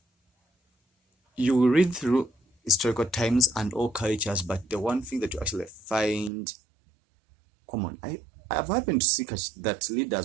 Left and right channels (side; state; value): left; drops out; at 6.3 s